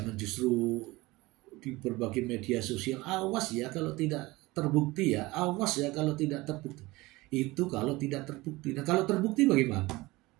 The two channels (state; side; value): quieter; left; 20.9 dB